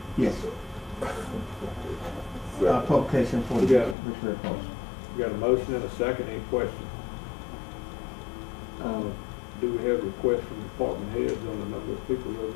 Yes, sir. Publication for We the got it. Richmond Post. We got a motion and a second, any questions? Do we have requests from department heads on the number of people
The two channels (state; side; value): drops out; right; at 4.0 s